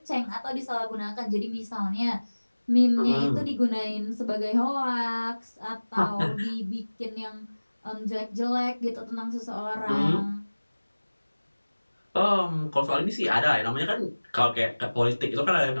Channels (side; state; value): both; inverted; correlation -1.00